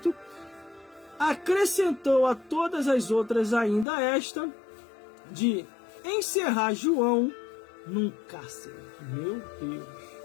acrescentou a todas as outras ainda esta, de encerrar João num cárcere. Meu Deus!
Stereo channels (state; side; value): drops out; right; at 3.9 s